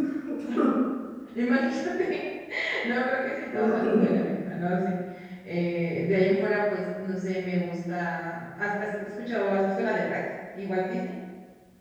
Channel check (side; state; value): both; identical; correlation 1.00